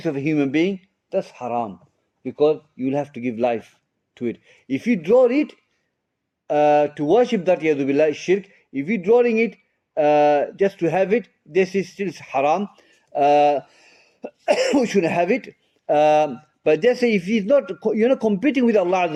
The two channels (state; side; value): identical; both; correlation 1.00